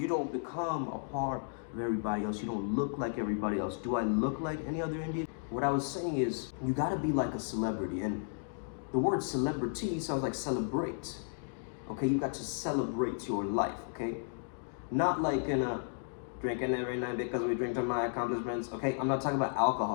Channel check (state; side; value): silent; right; digital silence